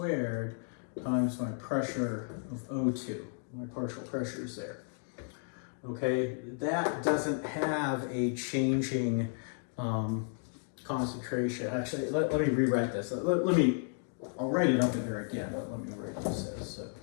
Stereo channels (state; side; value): silent; right; 56 dB below the other